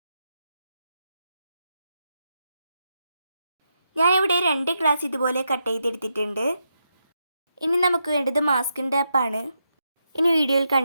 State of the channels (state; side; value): inverted; both; correlation -0.84